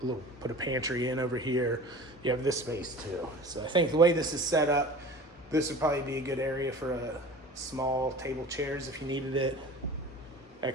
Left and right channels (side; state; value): both; normal; correlation 0.39